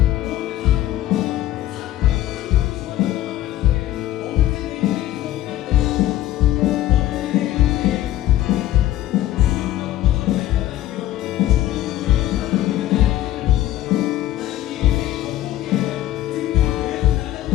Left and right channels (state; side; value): quieter; right; 14.0 dB